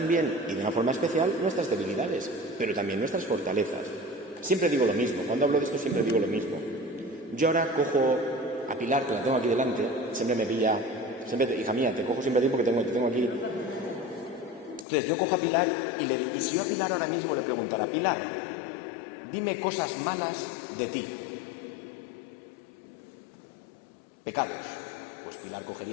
y de una forma especial, nuestras debilidades, pero también nuestras fortalezas. Siempre digo lo mismo, cuando hablo de esto siempre digo lo mismo. Yo ahora cojo a Pilar, que la tengo aquí delante, siempre me pilla, hija mía, te cojo siempre a ti porque te tengo aquí. Entonces yo cojo a Pilar y si yo a Pilar ahora mismo le preguntara: Pilar, dime cosas malas de ti. Pecados. Pues Pilar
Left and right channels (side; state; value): right; drops out; at 14.9 s